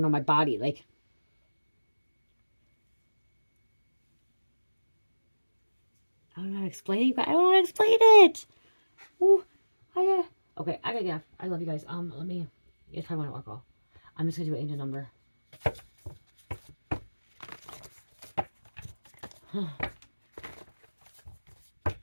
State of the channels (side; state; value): both; inverted; correlation -1.00